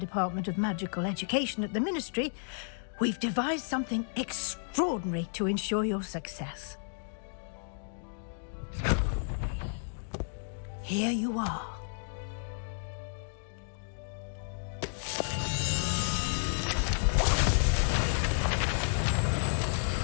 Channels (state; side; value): silent; right; digital silence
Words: of Magical Education at the Ministry, we've devised something extraordinary to ensure your success. Here you are.